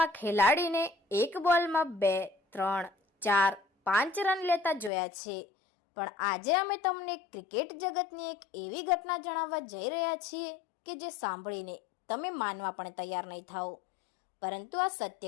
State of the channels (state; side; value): drops out; right; at 4.9 s